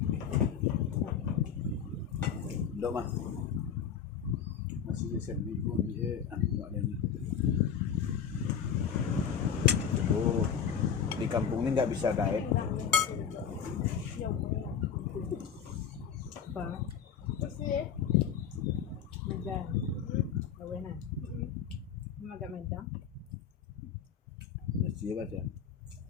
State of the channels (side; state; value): right; quieter; 7.6 dB